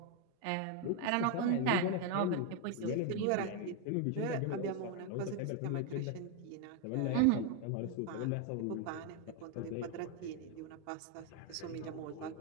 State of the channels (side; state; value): both; different; correlation 0.01